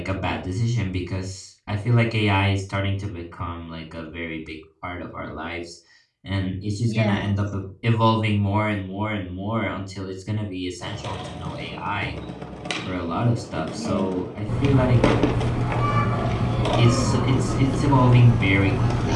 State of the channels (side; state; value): both; identical; correlation 1.00